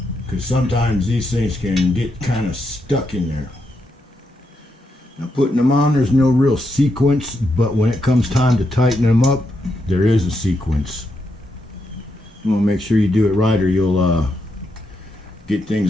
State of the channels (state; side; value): normal; both; correlation 0.82